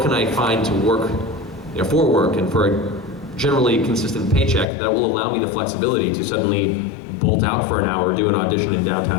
can I find to work, for work and for a generally consistent paycheck that will allow me the flexibility to suddenly bolt out for an hour, do an audition in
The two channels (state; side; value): drops out; right; at 4.7 s